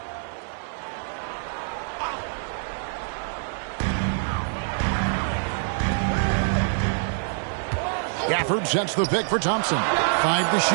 Gafford sets the pick for Thompson. 5 to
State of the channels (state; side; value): silent; left; 61 dB below the other